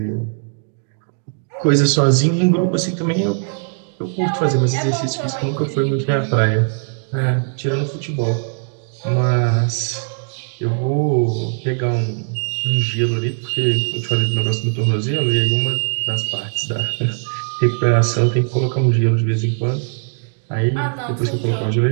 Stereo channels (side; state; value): left; silent; digital silence